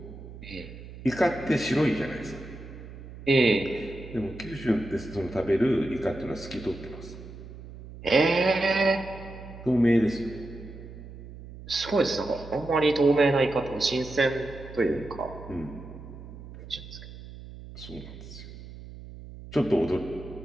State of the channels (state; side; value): noise; right; hum, 14 dB below the sound